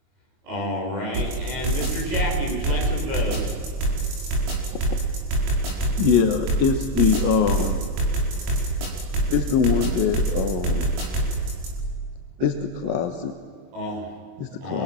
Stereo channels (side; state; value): left; late; 22 ms